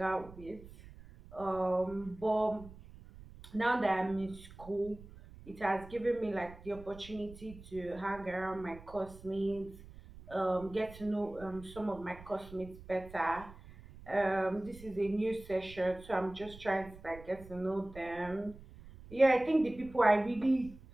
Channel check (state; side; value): noise; right; rumble, 18 dB below the sound